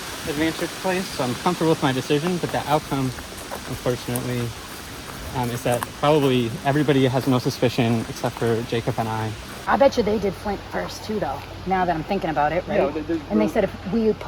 advantage place. So I'm comfortable with my decision, but the outcome, unfortunately, is that probably everybody has no suspicion except for Jacob and I. I bet you they did Flint first too, though. Now that I'm thinking about it, right? Yeah, and they said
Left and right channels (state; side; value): identical; both; correlation 1.00